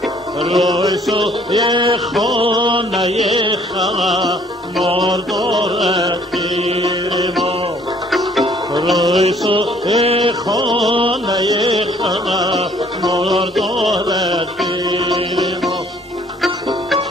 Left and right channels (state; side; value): normal; both; correlation 0.60